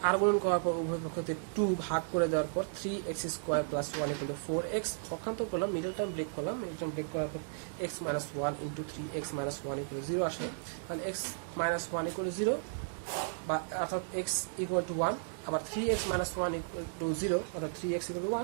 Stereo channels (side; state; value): left; silent; digital silence